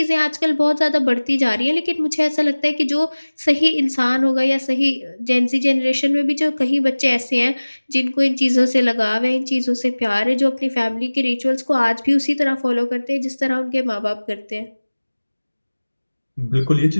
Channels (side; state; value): both; inverted; correlation -1.00